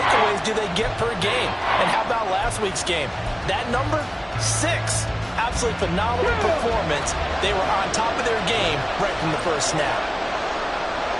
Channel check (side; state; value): both; identical; correlation 1.00